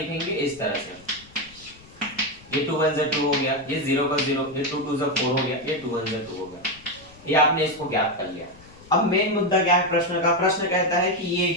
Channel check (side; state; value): left; noise; rumble, 24 dB below the sound